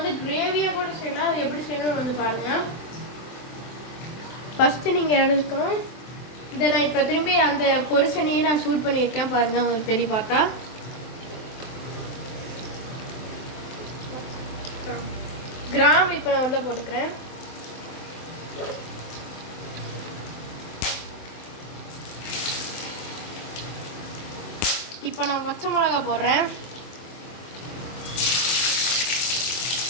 கிரேவியாக கூட செய்யலாம். அது எப்படி செய்யணும்னு வந்து பாருங்கள். ஃபஸ்ட்டு நீங்கள் எடுக்கணும். இதை நான் இப்போ திரும்பி அந்த பொரிசனையும் நான் சூட் பண்ணியிருக்கேன். பாருங்கள், உங்களுக்கு தெரிய பார்த்தா கிராம் இப்போ நான் உள்ளே போட்டுக்கிறேன். இப்போ நான் பச்சை மிளகா போடுறேன்.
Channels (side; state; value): right; late; 23 ms